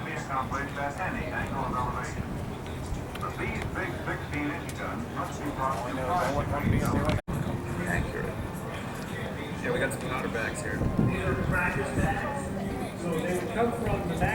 be accomplished at any angle of elevation. But these big 16-inch guns must be brought to 5 degrees elevation. Accurate. Yeah, we got some powder bags here. These are practice bags. So they would come from the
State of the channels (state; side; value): identical; both; correlation 1.00